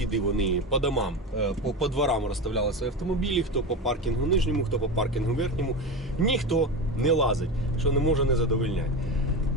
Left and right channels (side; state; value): both; normal; correlation 0.22